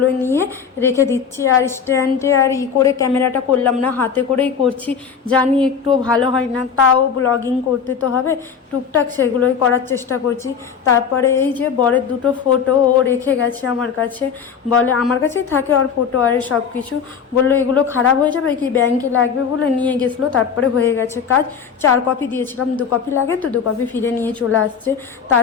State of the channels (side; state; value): right; quieter; 6.8 dB